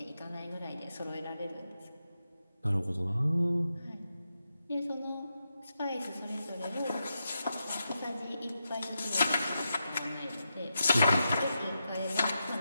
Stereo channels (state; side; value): inverted; both; correlation -0.87